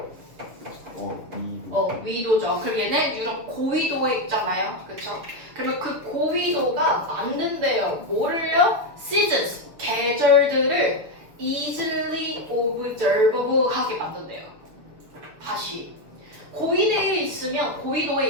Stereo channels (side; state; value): left; late; 7.0 ms